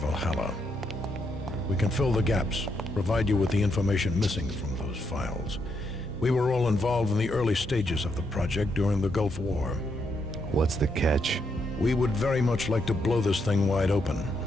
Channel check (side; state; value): both; normal; correlation 0.78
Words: We can fill the gaps, provide you with the information missing from those files. We were all involved in the early stages of the project during the Gulf War. What's the catch? We would very much like to blow this thing wide open,